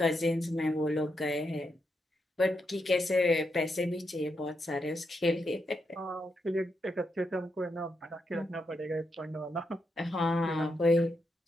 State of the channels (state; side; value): normal; both; correlation 0.83